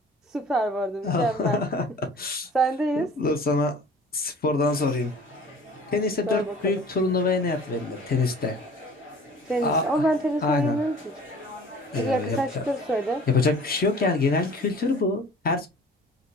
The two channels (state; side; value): normal; both; correlation 0.46